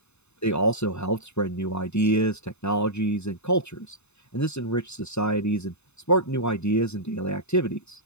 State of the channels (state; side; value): late; right; 0.81 ms